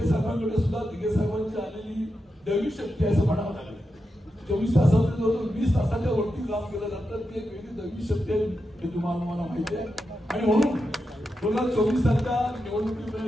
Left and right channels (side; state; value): both; normal; correlation 0.88